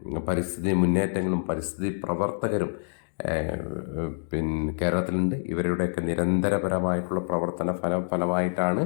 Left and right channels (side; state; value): right; silent; digital silence